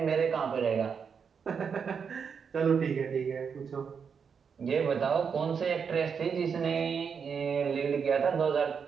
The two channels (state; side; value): quieter; left; 6.4 dB